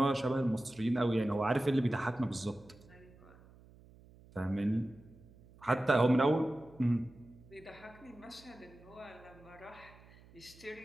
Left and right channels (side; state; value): right; noise; hum, 24 dB below the sound